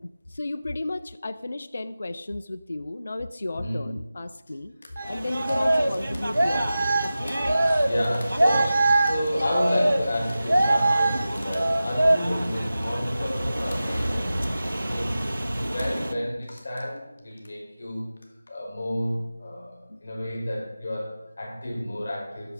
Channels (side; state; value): both; inverted; correlation -0.95